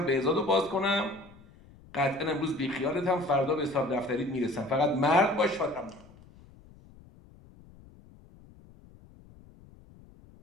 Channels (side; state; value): left; noise; rumble, 24 dB below the sound